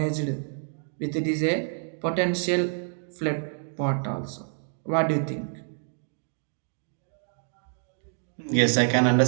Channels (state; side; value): silent; left; digital silence